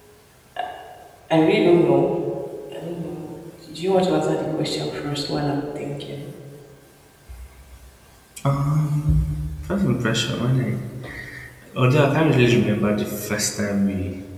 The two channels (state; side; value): identical; both; correlation 1.00